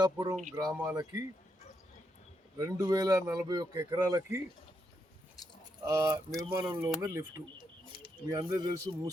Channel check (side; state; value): both; normal; correlation 0.81